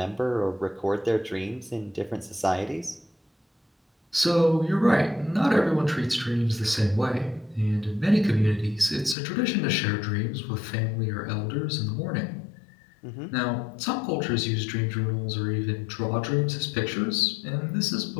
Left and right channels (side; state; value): right; drops out; at 9.2 s